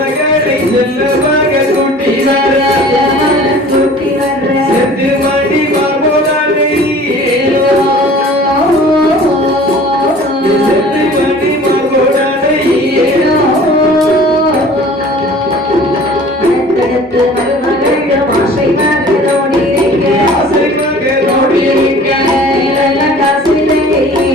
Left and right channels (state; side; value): normal; both; correlation 0.46